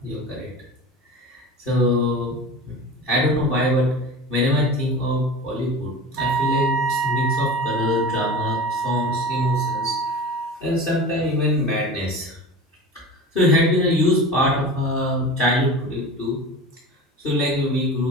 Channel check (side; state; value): both; normal; correlation 0.33